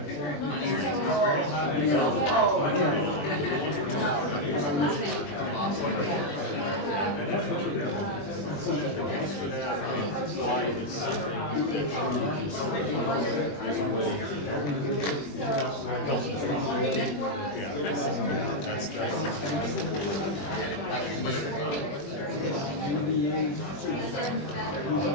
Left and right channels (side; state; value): right; late; 20 ms